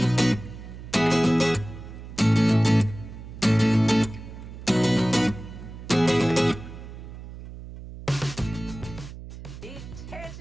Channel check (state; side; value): noise; right; hum, 13 dB below the sound